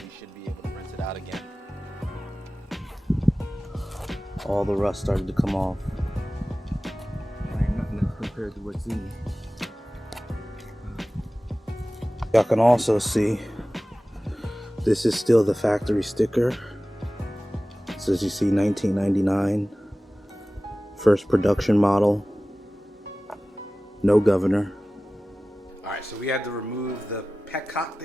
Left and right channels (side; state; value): both; normal; correlation 0.97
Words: should be able to rinse it out again. All the rust started to come off. Ain't nothing compared to what's in it. Y'all can also see this is still the factory sticker. So as you see, 1999, first production model, no governor. Alright, so we had to remove the petcock,